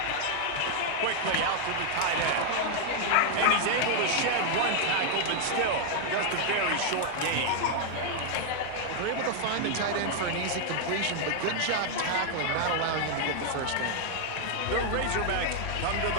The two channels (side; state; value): both; different; correlation 0.00